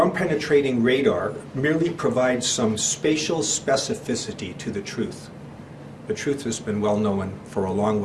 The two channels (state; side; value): identical; both; correlation 1.00